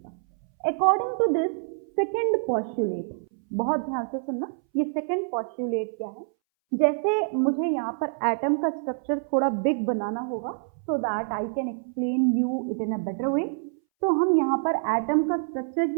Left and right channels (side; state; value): left; silent; 61 dB below the other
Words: According to this second postulate, बहुत ध्यान से सुनना, ये सेकंड पॉस्टुलेट क्या है? जैसे मुझे यहाँ पर एटम का स्ट्रक्चर थोड़ा बिग बनाना होगा so that I can explain you it in a better way, तो हम यहाँ पर एटम का स्ट्रक्चर